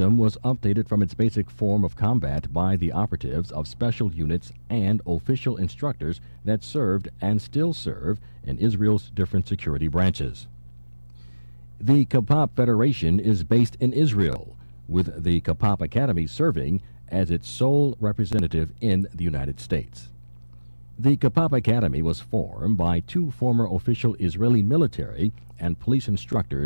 was updated from its basic form of combat by the operatives of special units and official instructors that served and still serve in Israel's different security branches. The KPOP Federation is based in Israel, with the KPOP Academy serving as its sole representative in the United States. The KPOP Academy was formed by two former official Israeli military and police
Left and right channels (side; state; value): both; inverted; correlation -1.00